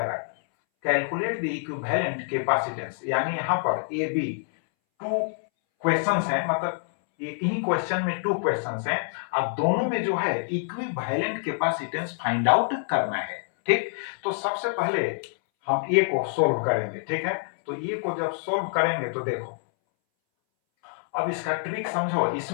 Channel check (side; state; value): right; silent; 61 dB below the other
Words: Calculate the equivalent capacitance. यानी यहां पर ए बी टू क्वेश्चंस हैं, मतलब एक ही क्वेश्चन में टू क्वेश्चंस हैं। अब दोनों में जो है इक्विवेलेंट कैपेसिटेंस फाइंड आउट करना है। ठीक, तो सबसे पहले हम ए को सोल्व करेंगे। ठीक है, तो ए को जब सोल्व करेंगे तो देखो अब इसका ट्रिक समझो।